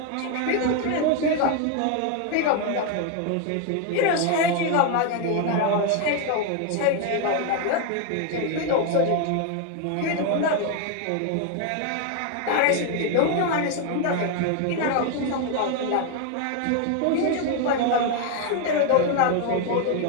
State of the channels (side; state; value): both; different; correlation 0.01